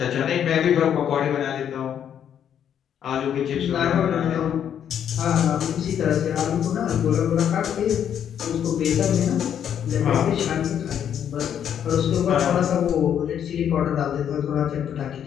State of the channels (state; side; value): quieter; right; 9.1 dB